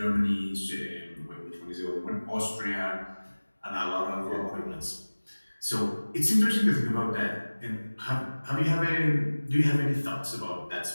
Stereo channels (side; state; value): both; inverted; correlation -1.00